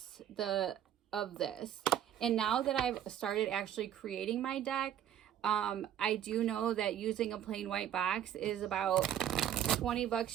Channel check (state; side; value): quieter; left; 10.4 dB